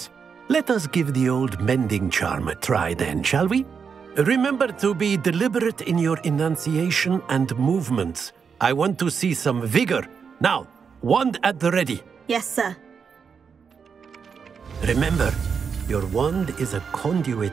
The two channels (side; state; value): left; quieter; 6.2 dB